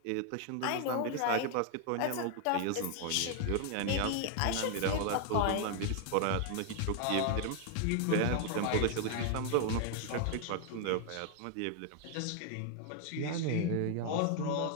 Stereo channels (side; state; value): both; different; correlation 0.00